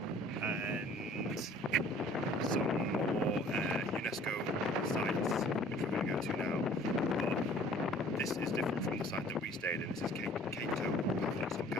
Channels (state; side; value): normal; both; correlation 0.52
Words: and some more UNESCO sites which we're going to go to now. But this is different from the site that we stayed in. This is KEO Paphos or